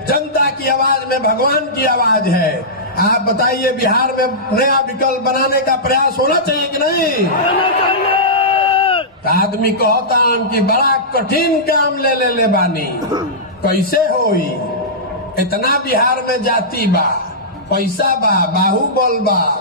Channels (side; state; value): both; normal; correlation -0.15